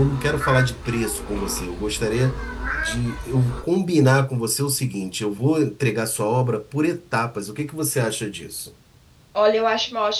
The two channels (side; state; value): both; identical; correlation 1.00